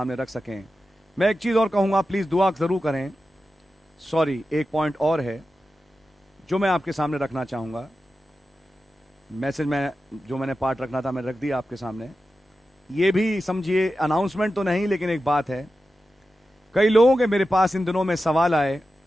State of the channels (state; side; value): normal; both; correlation 0.92